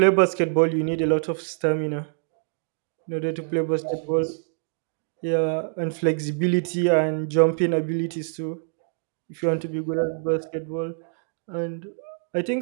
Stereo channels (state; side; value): silent; left; digital silence